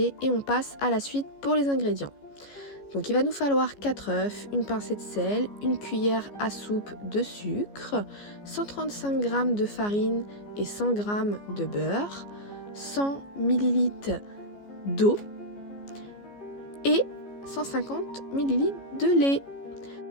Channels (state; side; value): late; right; 14 ms